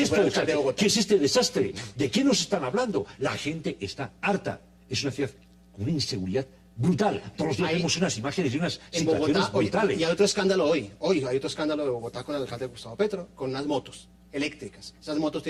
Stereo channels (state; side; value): identical; both; correlation 1.00